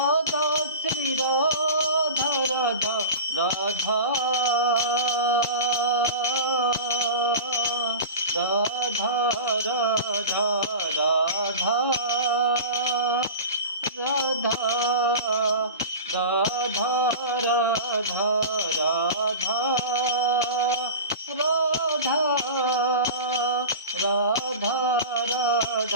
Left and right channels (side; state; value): both; inverted; correlation -0.31